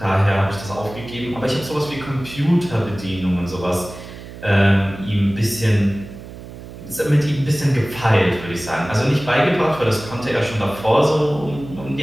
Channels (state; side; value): noise; right; hum, 14 dB below the sound